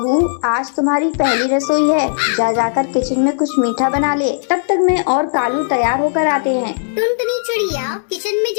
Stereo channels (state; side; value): silent; right; digital silence